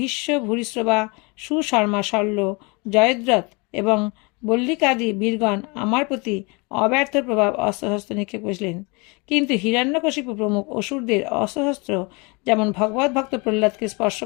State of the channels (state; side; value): quieter; right; 29.1 dB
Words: ভূরিশ্রবা, সুশর্মা, শল্য, জয়দ্রথ এবং বল্লিকাদি বীরগণ আমার প্রতি অব্যর্থ প্রভাব অস্ত্রশস্ত্র নিক্ষেপ করেছিলেন, কিন্তু হিরণ্যকশিপু প্রমুখ অসুরদের অস্ত্রশস্ত্র যেমন ভগবত ভক্ত প্রহ্লাদকে স্পর্শ